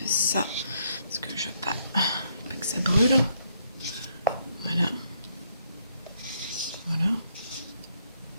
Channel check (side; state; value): both; inverted; correlation -0.72